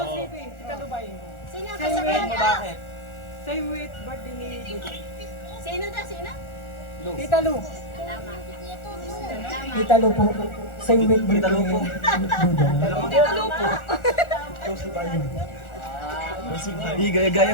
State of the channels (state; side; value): late; right; 1.4 ms